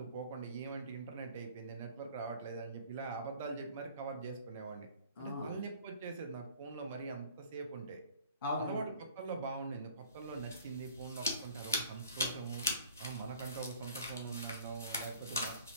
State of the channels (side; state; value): both; inverted; correlation -0.50